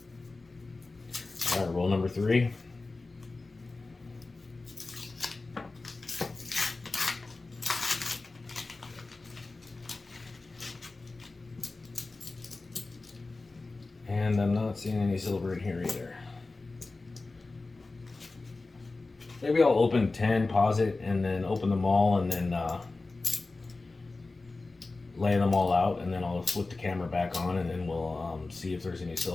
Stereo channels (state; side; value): quieter; right; 3.5 dB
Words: All right, roll number 3. And I'm not seeing any silver in here either. Maybe I'll open 10, pause it, and then open them all, and then lay them all out, and then I'll flip the camera back on, and then we'll see if there's any